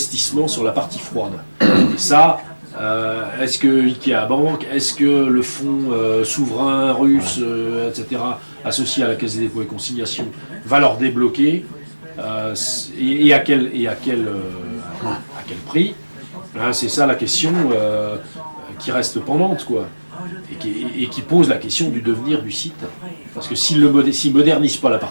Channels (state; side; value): inverted; both; correlation -1.00